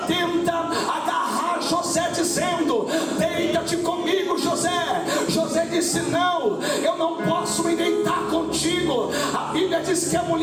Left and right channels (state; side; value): identical; both; correlation 1.00